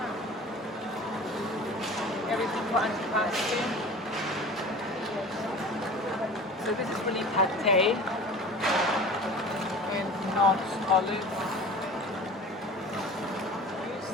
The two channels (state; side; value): normal; both; correlation 0.39